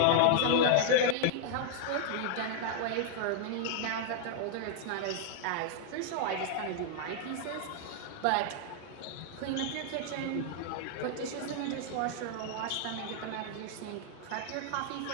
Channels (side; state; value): both; different; correlation -0.01